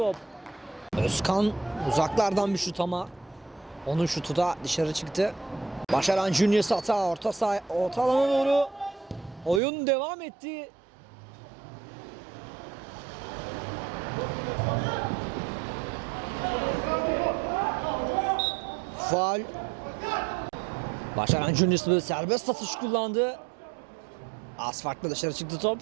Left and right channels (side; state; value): left; drops out; at 9.6 s